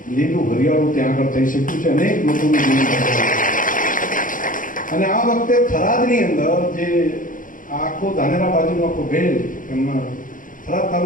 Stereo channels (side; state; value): right; late; 0.39 ms